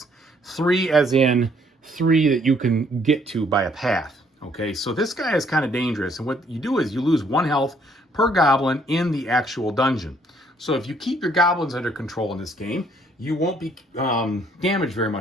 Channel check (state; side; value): normal; both; correlation 0.65